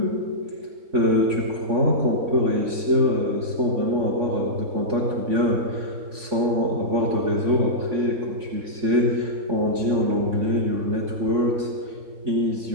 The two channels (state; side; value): late; left; 3.5 ms